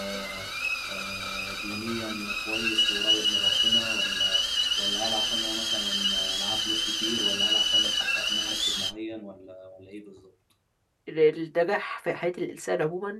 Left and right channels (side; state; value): both; identical; correlation 1.00